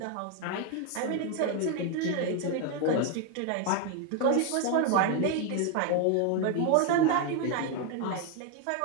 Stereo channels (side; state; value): both; different; correlation 0.01